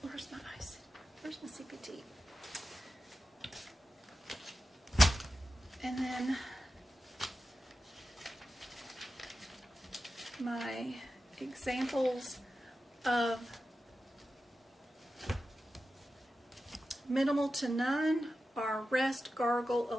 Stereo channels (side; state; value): both; normal; correlation 0.92